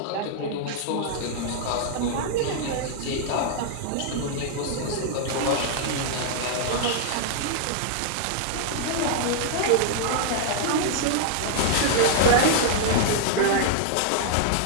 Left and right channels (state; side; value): different; both; correlation -0.01